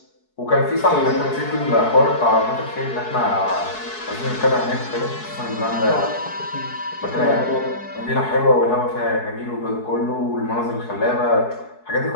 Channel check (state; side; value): late; right; 4.7 ms